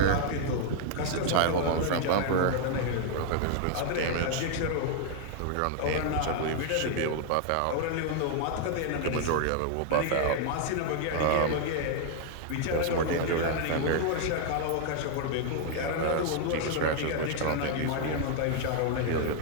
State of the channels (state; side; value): different; both; correlation 0.00